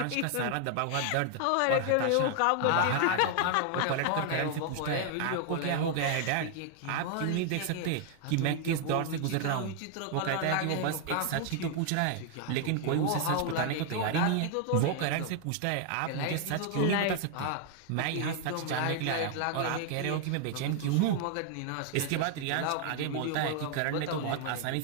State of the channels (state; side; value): different; both; correlation 0.00